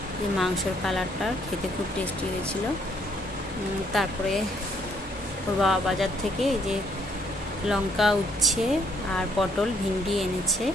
যে মাংসর কালারটা খেতে খুব টেস্টি হয়েছিল। তারপরে ওর বাবা বাজার থেকে এই যে লঙ্কা, উচ্ছে আর পটল, ভিন্ডি এনেছে।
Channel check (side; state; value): both; normal; correlation 0.67